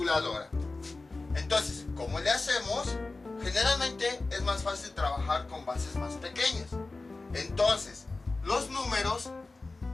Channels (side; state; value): right; quieter; 3.4 dB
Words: Entonces, ¿cómo le hacemos? Generalmente es más fácil trabajar con bases más pequeñas. Entonces, los números